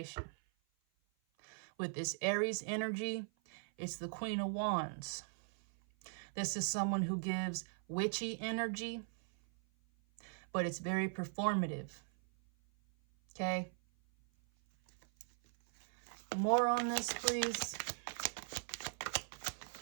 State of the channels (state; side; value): silent; left; 51 dB below the other